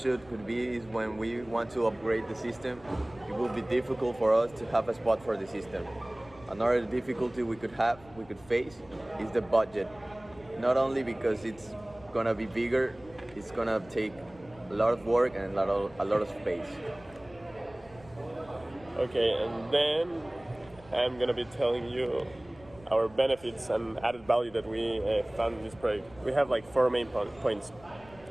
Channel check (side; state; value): left; noise; rumble, 23 dB below the sound